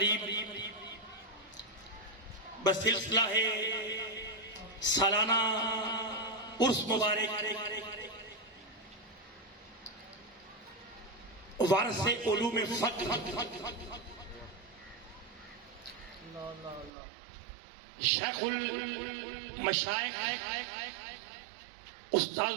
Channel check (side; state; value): left; drops out; at 16.9 s